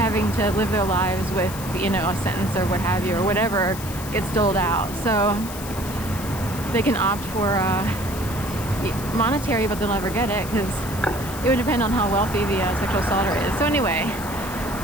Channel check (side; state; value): left; noise; hiss, 12 dB below the sound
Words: to live their lives with, a sentence or what have you, or whatever gets doled out. So they can opt for monetary, but they'll never get it because it would depend on how wealthy the sexual assaulter is. So anyway,